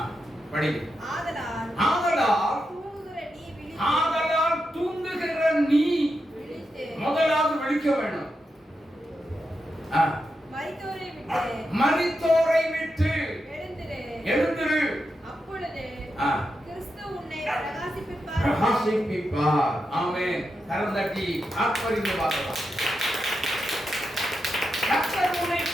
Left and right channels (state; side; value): normal; both; correlation 0.87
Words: படி. ஆதலால் தூங்குகிற நீ விழித்து. ஆதலால் தூங்குகிற நீ விழித்து. முதலாவது விழிக்க வேண்டும். மரித்தோரை விட்டு எழுந்திரு. அப்பொழுது கிறிஸ்து உன்னை பிரகாசிப்பிப்பார். ஆமென். கரந்தட்டி ஆத்மரிந்து வாசலாம். கர்த்தர் உன்னை